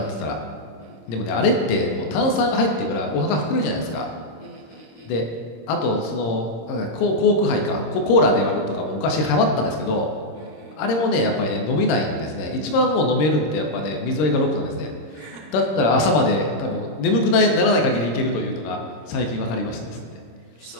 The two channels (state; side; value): late; right; 26 ms